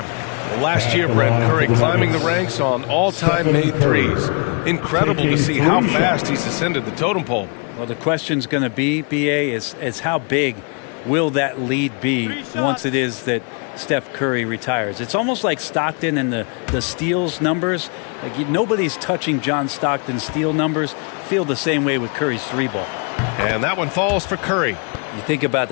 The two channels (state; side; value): quieter; right; 37.2 dB